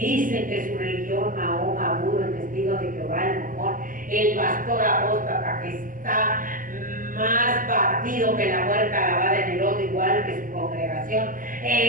que su religión, Mahoma, Buda, el testigo de Jehová, el Mormón, el pastor apóstata, que está más partido que la huerta lavada en el lodo, igual que su congregación,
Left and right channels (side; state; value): left; late; 0.40 ms